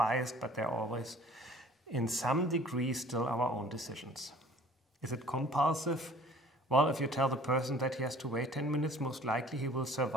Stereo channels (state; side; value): normal; both; correlation 0.50